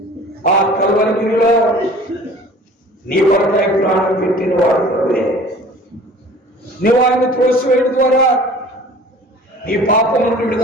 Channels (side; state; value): both; normal; correlation 0.46